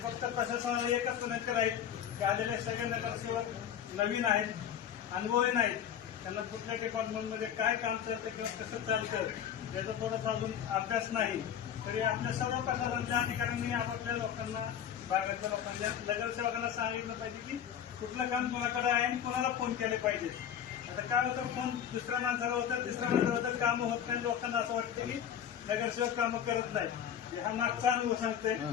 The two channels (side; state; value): right; quieter; 9.2 dB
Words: प्रशासनाला एकच विनंती राहील की आलेले सगळे नगरसेवक नवीन आहेत, अनुभवी नाहीत, त्यांना कुठल्या डिपार्टमेंटमध्ये काय काम चालतं किंवा कसं चालतं त्याचा थोडासा अजून अभ्यास नाही. तरी आपल्या सर्व प्रशासनाच्या अधिकाऱ्यांनी आपापल्या लोकांना, भागातल्या लोकांच्या नगरसेवकांना सांगितलं पाहिजे की कुठलं काम कोणाकडे आहे आणि कोणाला फोन केले पाहिजे. आता काय होतं, फोन दुसऱ्या माणसाला होतं, तिसऱ्या माणसाला होतं, कामं होत नाही. लोकांना असं वाटतं की नगरसेवक कामं करत नाही. हा मागचा अनुभव सांगतोय.